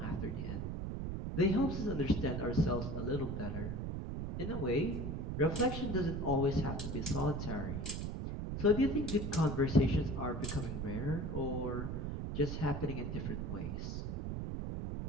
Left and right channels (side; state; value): right; noise; rumble, 3 dB below the sound